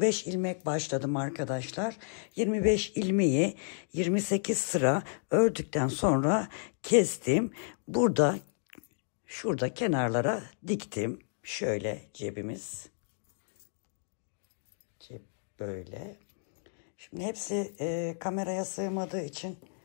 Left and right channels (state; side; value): silent; right; digital silence